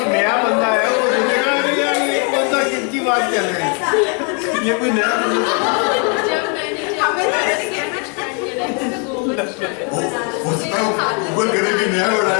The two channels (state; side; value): quieter; right; 37.5 dB